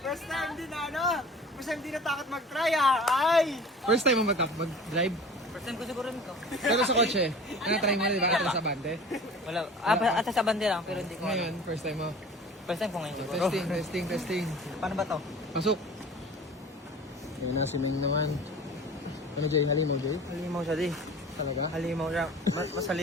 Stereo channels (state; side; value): normal; both; correlation 0.42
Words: First time din na ano? First time din natakot mag-try Ay! First time mo mag-drive? First time ko siguro nito. Pero sa kotse, try mo na, di ba? Atras sa bante. Wala. At sa bande lang, pero hindi ko Ngayon, first time mo. First time ko ngayon siguro. Testing. Paano ba to? Pasok. Ayun na, si Meng naman. Ano, Jay? Halimaw, Jay? Halimaw siya di. Talaga? Halimaw siya. Mas